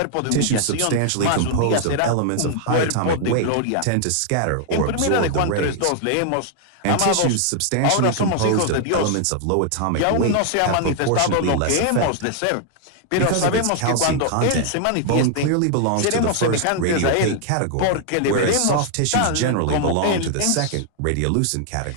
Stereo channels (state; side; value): different; both; correlation 0.00